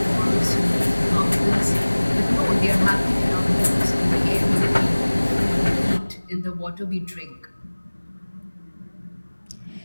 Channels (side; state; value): both; inverted; correlation -1.00